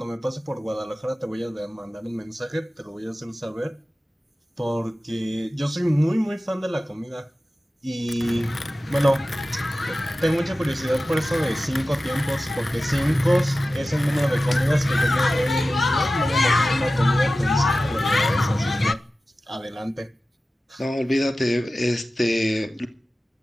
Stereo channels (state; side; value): normal; both; correlation 0.95